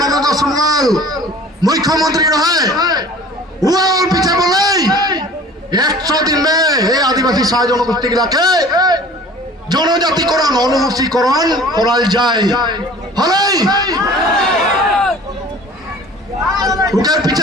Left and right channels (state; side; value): normal; both; correlation 0.46